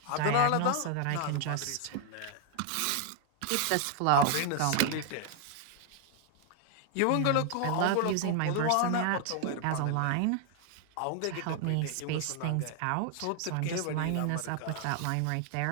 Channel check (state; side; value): different; both; correlation 0.00